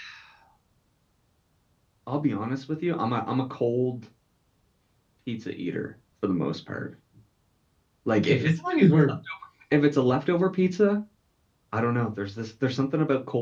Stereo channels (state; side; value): identical; both; correlation 1.00